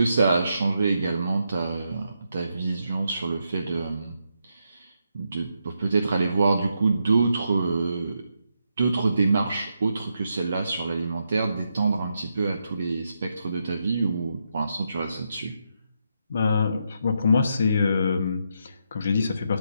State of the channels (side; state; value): both; inverted; correlation -0.82